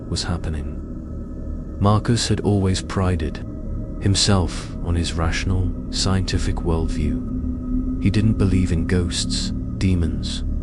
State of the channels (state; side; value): identical; both; correlation 1.00